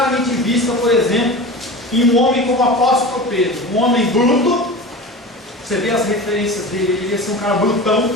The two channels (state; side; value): normal; both; correlation 0.32